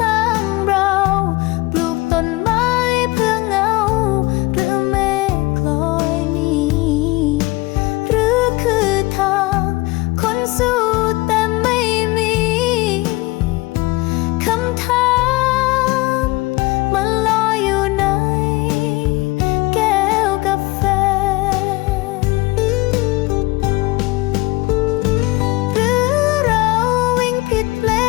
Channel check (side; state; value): right; quieter; 22.1 dB